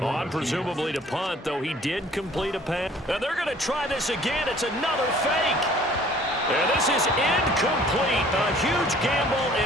On presumably to punt, though he did complete a pass. And they're going to try this again. It's another fake. And this is incomplete. A huge gamble,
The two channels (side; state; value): both; normal; correlation 0.54